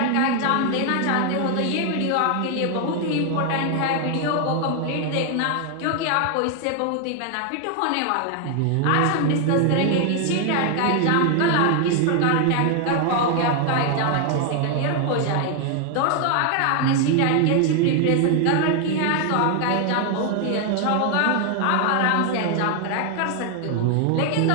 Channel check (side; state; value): both; different; correlation 0.00